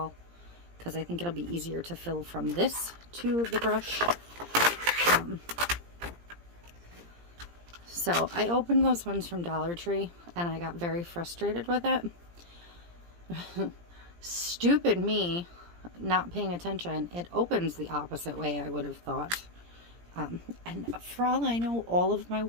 because I think it'll be easier to fill from this to the brush. So I opened those ones from Dollar Tree and I got very frustrated with it. Stupid me not paying attention. It opens the opposite way, I would have thought. And for all I know, all of my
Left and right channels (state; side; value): late; left; 17 ms